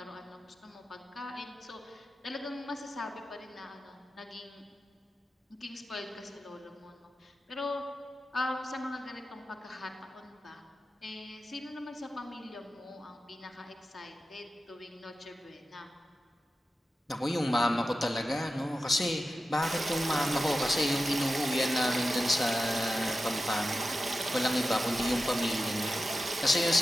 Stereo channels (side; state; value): both; normal; correlation 0.92